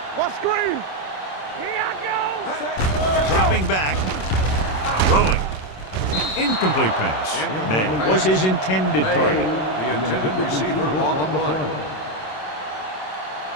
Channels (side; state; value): right; late; 27 ms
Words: What screen? Here I go. Dropping back. Throwing. Incomplete pass. May was his intended target. The intended receiver on the play.